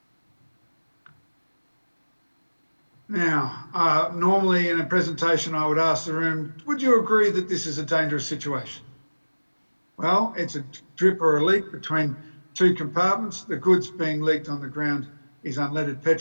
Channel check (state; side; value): inverted; both; correlation -1.00